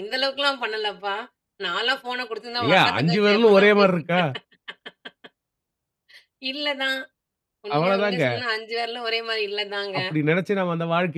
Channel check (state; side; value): identical; both; correlation 1.00